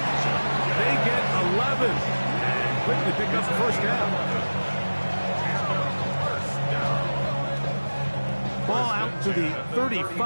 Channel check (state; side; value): inverted; both; correlation -1.00